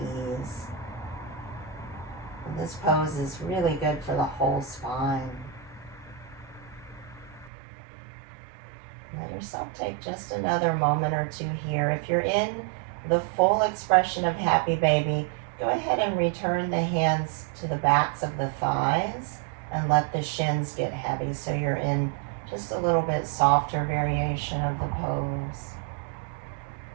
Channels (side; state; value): left; drops out; at 7.5 s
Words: And this pose is really good for the whole spine. Let yourself take just another moment or two here. If you're in the full expression of happy baby, go ahead and return the hands to the backs of the thighs and let the shins get heavy so you're in just a little bit softer variation of the pose.